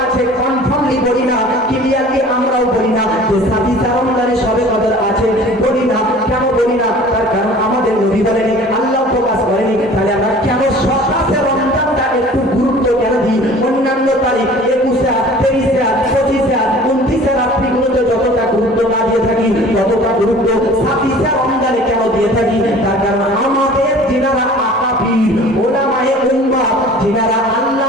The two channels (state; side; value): normal; both; correlation 0.46